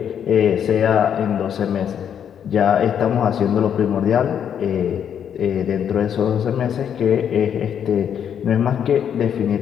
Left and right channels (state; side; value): quieter; right; 8.6 dB